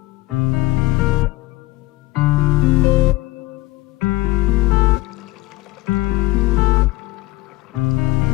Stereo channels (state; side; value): quieter; right; 19.1 dB